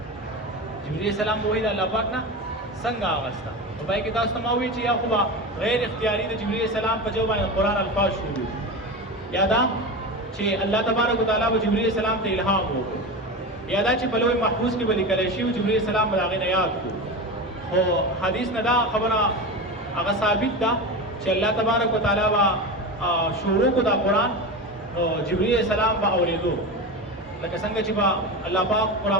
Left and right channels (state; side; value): normal; both; correlation 0.24